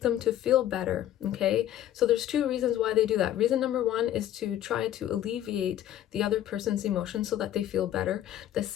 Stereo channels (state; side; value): quieter; right; 12.1 dB